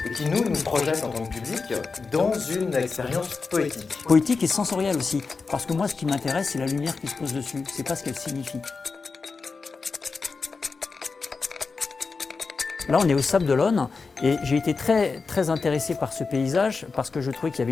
et qui nous projette en tant que public dans une expérience poétique. Poétique et sensorielle aussi, parce que moi ce qui m'intéresse c'est la lumière qui se pose dessus, c'est pas ce qu'elle signifie. Là, on est au Sable d'Olonne et j'ai été très intéressé par ce paysage parce que je trouvais qu'il y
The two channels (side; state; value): right; quieter; 4.5 dB